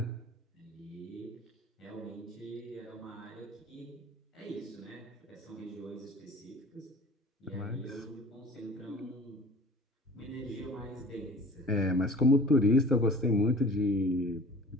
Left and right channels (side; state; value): both; normal; correlation 0.44